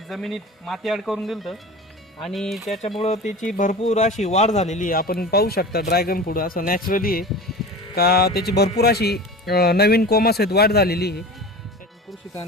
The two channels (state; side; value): normal; both; correlation 0.34